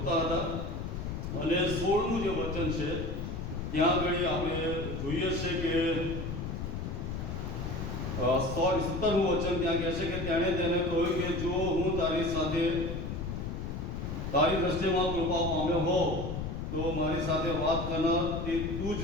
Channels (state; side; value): noise; left; rumble, 4 dB below the sound